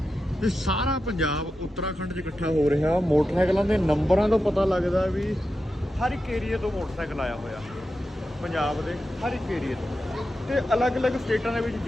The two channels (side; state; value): both; normal; correlation 0.90